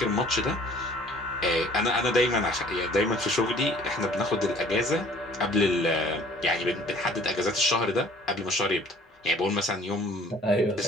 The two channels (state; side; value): normal; both; correlation 0.53